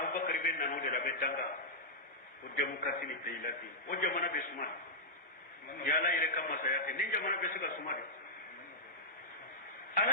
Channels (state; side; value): normal; both; correlation -0.10